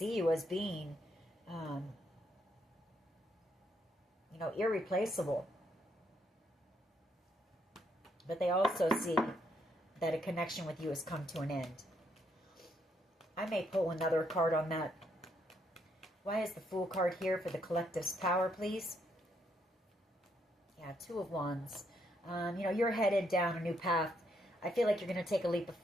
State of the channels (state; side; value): normal; both; correlation 0.74